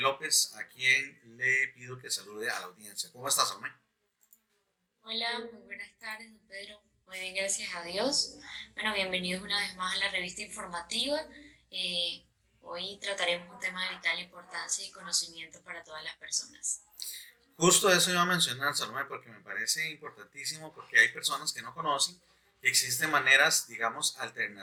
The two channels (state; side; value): identical; both; correlation 1.00